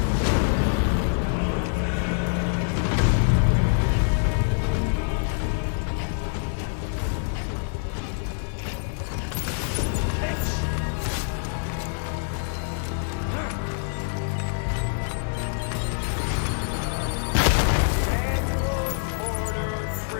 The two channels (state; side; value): silent; right; digital silence